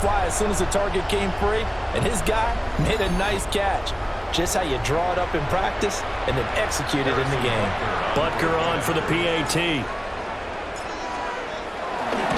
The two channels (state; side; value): identical; both; correlation 1.00